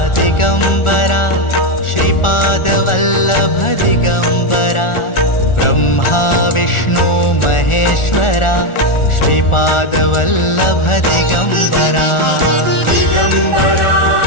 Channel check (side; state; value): right; late; 1.4 ms